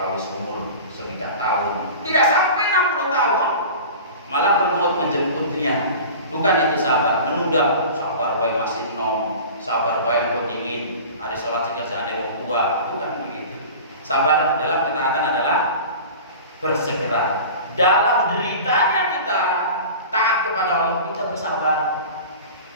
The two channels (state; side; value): inverted; both; correlation -0.37